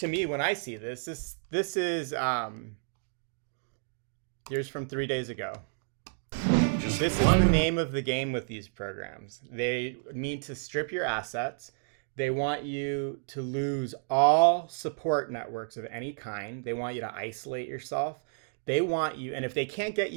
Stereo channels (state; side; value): silent; left; digital silence